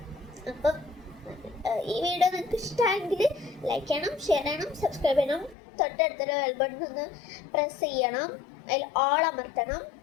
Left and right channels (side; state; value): right; drops out; at 5.6 s